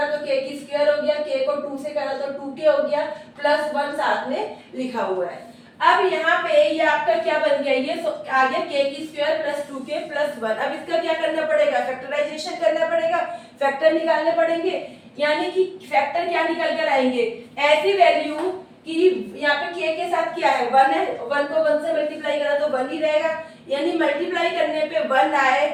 तो k की स्क्वायर हो गया, k को 2 से करा तो 2k हो गया प्लस 1 साथ में लिखा हुआ है। अब यहाँ पे ये आपका क्या बन गया, ये आ गया k की स्क्वायर प्लस 2k प्लस 1। अब इसका क्या करना पड़ेगा, फैक्टराइजेशन करना पड़ेगा, फैक्टर निकालने पड़ेंगे, यानी कि फैक्टर क्या निकल कर आएंगे, ऐसी वैल्यू कि यहाँ पे k के साथ क्या है 1 है, 1 को 1 से मल्टीप्लाई करा तो 1 ही रहेगा, यानी मल्टीप्लाई करने पे 1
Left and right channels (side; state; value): both; identical; correlation 1.00